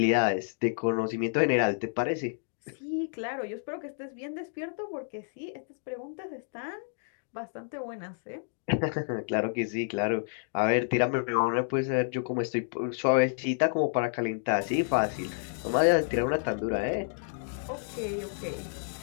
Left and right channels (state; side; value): silent; right; digital silence